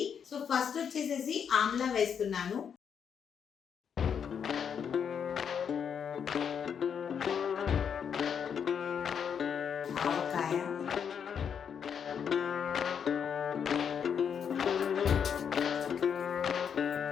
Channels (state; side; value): quieter; right; 7.5 dB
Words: సో ఫస్ట్ వచ్చేసేసి ఆమ్లా వేస్తున్నాను. ఆవకాయ,